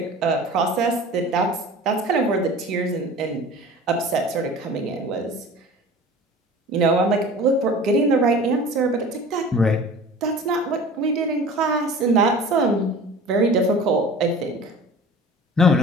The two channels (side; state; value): both; normal; correlation 0.40